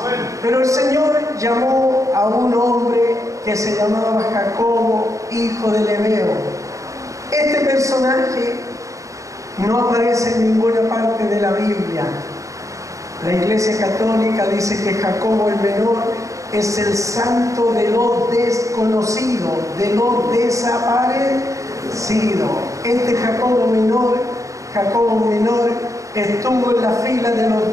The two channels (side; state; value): left; late; 0.16 ms